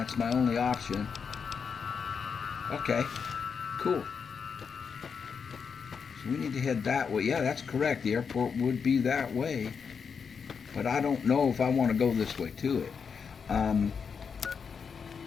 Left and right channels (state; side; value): quieter; right; 6.1 dB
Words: my only option. Okay, cool. So we need to head that way. Yeah, that's correct. The airport would be that way. But I don't know if I want to go this way to it.